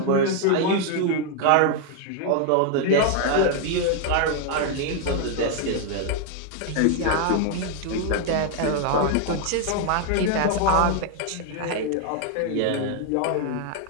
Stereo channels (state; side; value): different; both; correlation 0.00